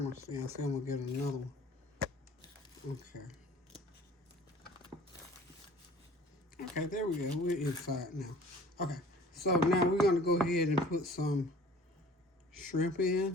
stand. I say I'm going to get another one. Okay. Okay, there we go. We're inside now. Okay, so now we're going to go ahead and put some shrimp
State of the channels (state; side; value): normal; both; correlation 0.48